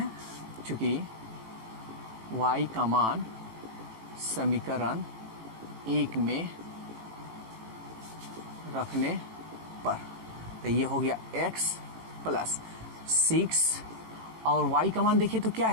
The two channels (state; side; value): late; left; 18 ms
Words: क्योंकि y का मान समीकरण 1 में रखने पर, तो ये हो गया x प्लस 6, और y का मान देखिए तो क्या